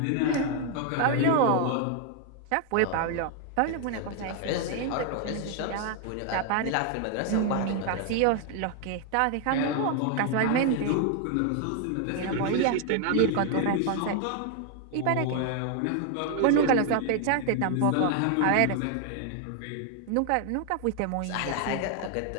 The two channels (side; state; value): both; different; correlation 0.00